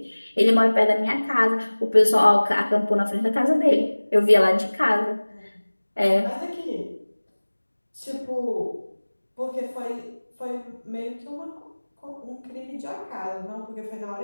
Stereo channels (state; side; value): inverted; both; correlation -1.00